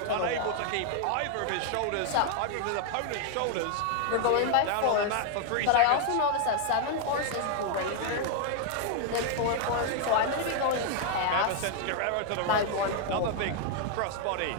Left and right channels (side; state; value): both; different; correlation 0.00